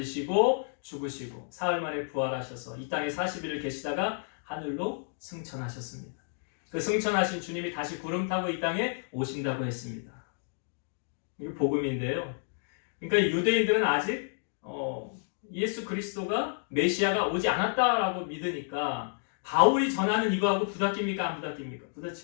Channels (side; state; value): right; silent; digital silence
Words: 죽으시고 사흘 만에 부활하셔서 이 땅에 40일을 계시다가 하늘로 승천하셨습니다. 그 승천하신 주님이 다시 구름 타고 이 땅에 오신다고 했습니다. 이게 복음인데요. 그러니까 유대인들은 아직 예수 그리스도가 메시아가 오지 않았다라고 믿으니까 바울이 전하는 이거하고 부닥깁니까? 안 부닥깁니까?